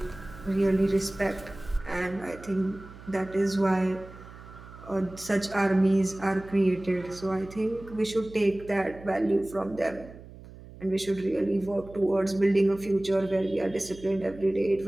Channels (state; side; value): noise; right; hum, 18 dB below the sound